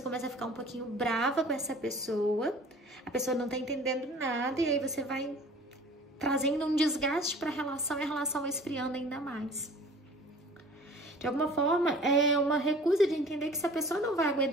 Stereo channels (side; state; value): both; normal; correlation 0.46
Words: começa a ficar um pouquinho brava com essa pessoa. A pessoa não tá entendendo nada e aí você vai trazendo um desgaste para a relação e a relação vai esfriando ainda mais. De alguma forma, é uma recusa de entender que se a pessoa não vai